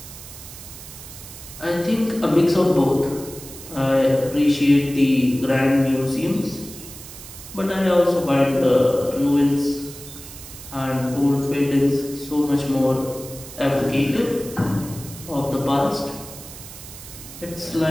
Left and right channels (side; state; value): right; noise; hiss, 15 dB below the sound